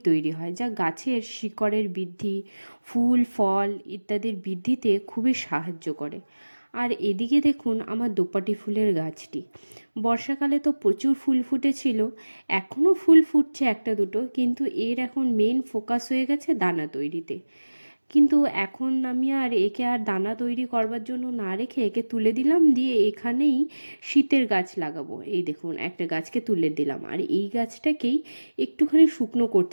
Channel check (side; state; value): both; inverted; correlation -1.00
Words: তৈরি হয়, যা গাছের শিকড়ের বৃদ্ধি, ফুল ফল ইত্যাদির বৃদ্ধিতে খুবই সাহায্য করে। আর এদিকে দেখুন আমার দোপাটি ফুলের গাছটি। বর্ষাকালে তো প্রচুর ফুল ফুটেছিল, এখনও ফুল ফুটছে একটা দুটো, কিন্তু এর এখন মেন ফোকাস হয়ে গেছে দানা তৈরিতে। কিন্তু এখন আমি আর একে আর দানা তৈরি করবার জন্য না রেখে একে তুলে দিলাম, দিয়ে এখানেই শীতের গাছ লাগাবো। এই দেখুন, একটা গাছকে তুলে দিলাম, আর এই গাছটাকেই একটুখানি শুকনো